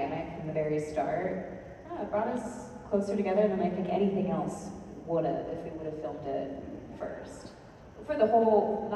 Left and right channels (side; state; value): both; identical; correlation 1.00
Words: from the very start. It brought us closer together than I think anything else would have if we would have filmed it first. For the whole,